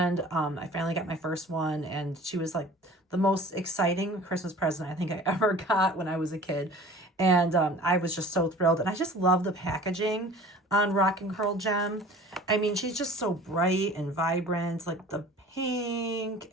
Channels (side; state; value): both; normal; correlation 0.44